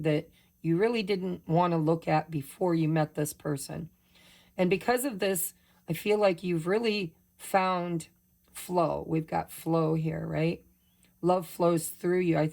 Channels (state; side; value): identical; both; correlation 1.00